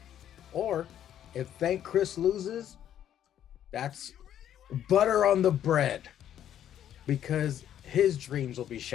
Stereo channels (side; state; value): right; quieter; 10.6 dB